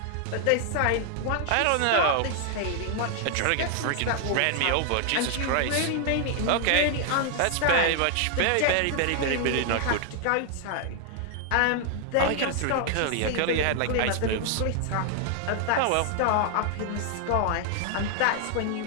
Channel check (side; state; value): both; different; correlation 0.00